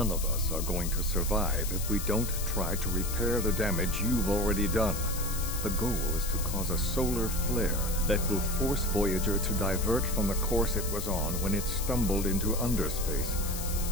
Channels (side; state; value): left; noise; hiss, 7 dB below the sound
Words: of us are going to survive if we don't try to repair the damage you've already done. The goal is to cause a solar flare that will force Voyager to divert from the course it was on when it stumbled into underspace.